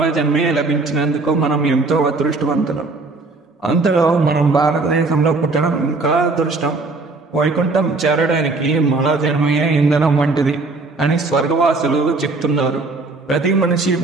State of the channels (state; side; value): quieter; left; 3.6 dB